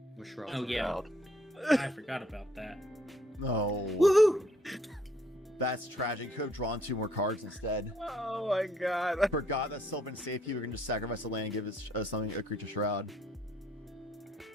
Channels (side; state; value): both; normal; correlation 0.66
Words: With Shroud. Oh yeah, I forgot about that. No. Woohoo! That's tragic. Could have drawn 2 more cards instead. Oh my God. I Forgot that Sylvan Safety. We can just sacrifice a land and give it something a creature shroud.